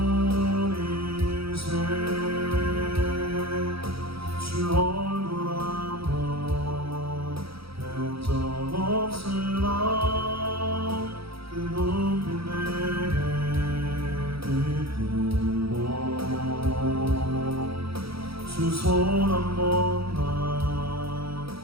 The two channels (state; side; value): late; left; 0.76 ms